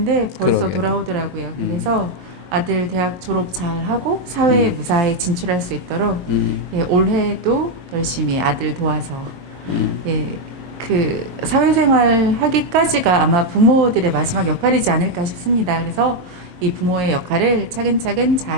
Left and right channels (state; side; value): late; left; 22 ms